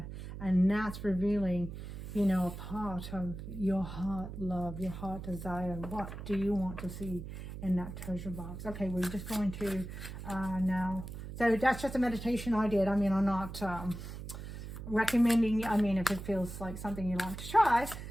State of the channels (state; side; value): noise; right; hum, 9 dB below the sound